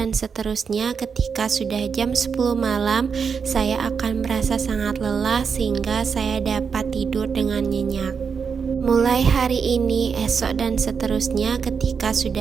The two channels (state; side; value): quieter; left; 6.1 dB